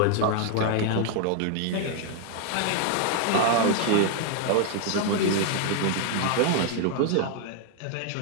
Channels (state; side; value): different; both; correlation 0.00